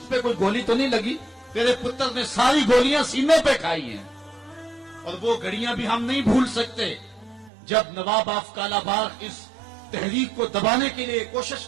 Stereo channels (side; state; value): left; drops out; at 7.5 s